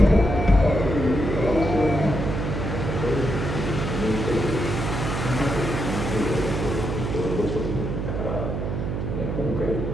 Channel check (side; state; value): right; noise; hum, 3 dB below the sound